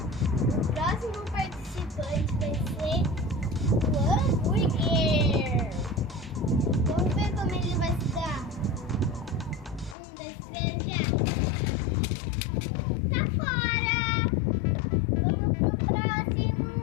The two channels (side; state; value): right; drops out; at 10.0 s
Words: O próximo participante vai ser o hambúrguer. Vamos ver como ele vai se dar. 1, 2, 3, já. Tá fora. Vamos pro próximo.